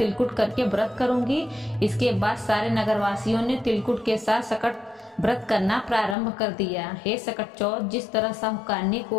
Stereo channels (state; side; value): drops out; right; at 6.2 s